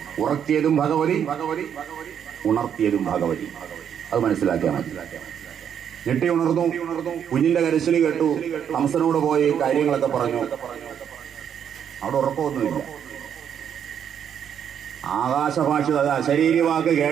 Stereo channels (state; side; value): quieter; left; 8.6 dB